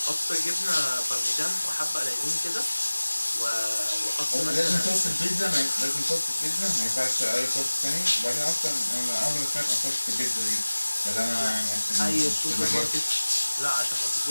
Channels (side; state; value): both; inverted; correlation -1.00